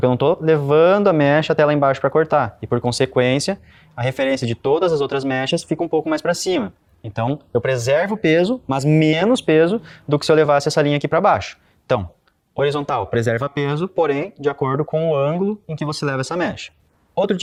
eu não estou levando a mecha até lá embaixo para cortar. E por consequência, a referência de todas as outras mechas fica um pouco mais para cima. Então, eu preservo o peso, mas menos peso do que se eu levasse essa linha aqui para baixo. Então, horizontal, preserva peso, porém, de acordo com o ângulo em que você leva essa mecha. Outro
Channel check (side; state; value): both; identical; correlation 1.00